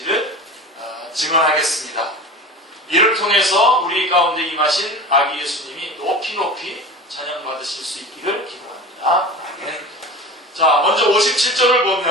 증언하겠습니다. 이를 통해서 우리 가운데 임하신 아기 예수님이 높이 높이 찬양받으실 수 있기를 기도합니다. 아멘. 자, 먼저 57절을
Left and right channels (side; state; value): both; normal; correlation 0.32